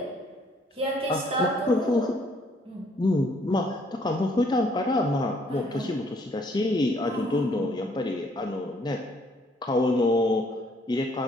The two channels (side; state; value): both; normal; correlation 0.65